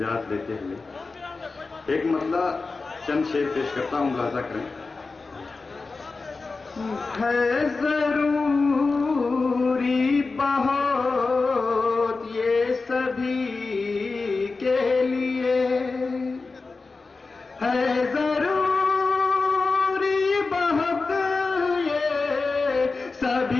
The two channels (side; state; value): right; quieter; 4.0 dB